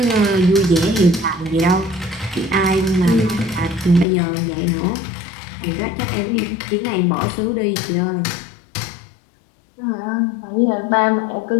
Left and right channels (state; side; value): drops out; right; at 4.0 s